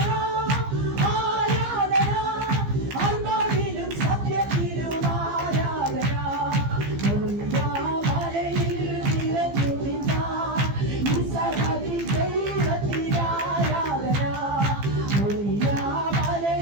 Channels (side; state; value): left; late; 15 ms